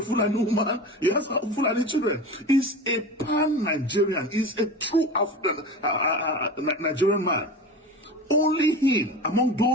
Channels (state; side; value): normal; both; correlation 0.31